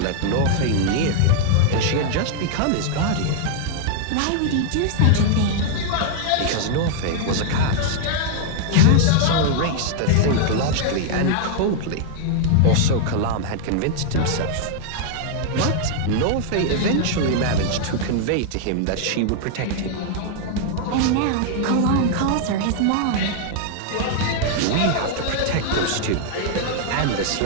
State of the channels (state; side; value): different; both; correlation -0.01